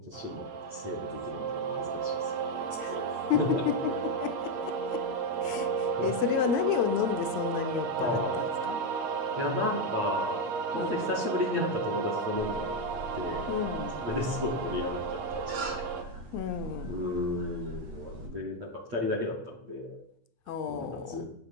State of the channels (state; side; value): late; left; 8.5 ms